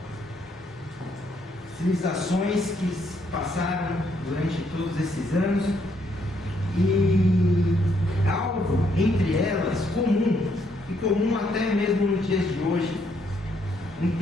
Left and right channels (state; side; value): normal; both; correlation 0.72